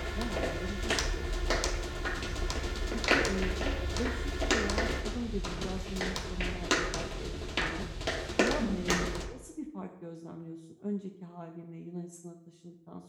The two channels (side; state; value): both; identical; correlation 1.00